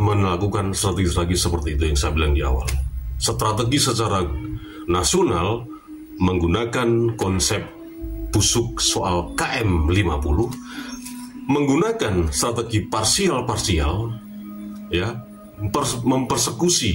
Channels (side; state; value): both; identical; correlation 1.00